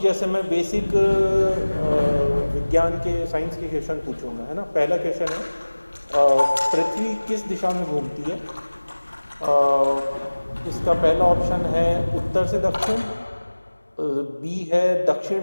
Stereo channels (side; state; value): both; inverted; correlation -1.00